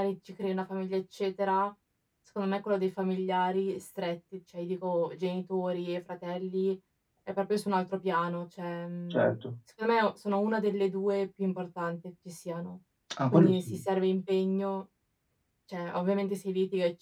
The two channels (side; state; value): both; identical; correlation 1.00